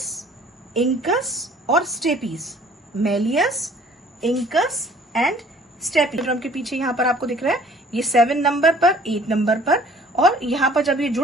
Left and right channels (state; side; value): normal; both; correlation 0.54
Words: इंकस और stapes. Malleus, incus and stapes. Drum के पीछे यहाँ पर आपको दिख रहा है ये 7 नंबर पर, 8 नंबर पर, और यहाँ पर जब ये